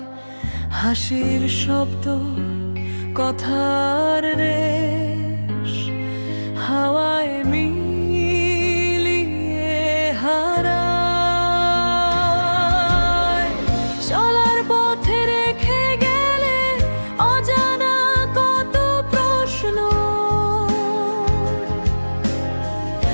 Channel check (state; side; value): inverted; both; correlation -1.00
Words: হাসির শব্দ, কথার রেশ, হাওয়ায় মিলিয়ে হারায়। চলার পথে রেখে গেলে অজানা কত প্রশ্ন,